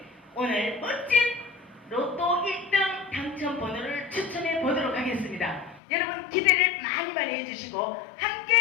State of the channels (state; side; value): drops out; right; at 5.8 s